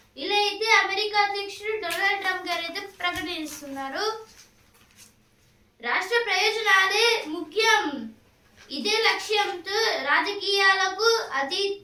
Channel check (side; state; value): both; identical; correlation 1.00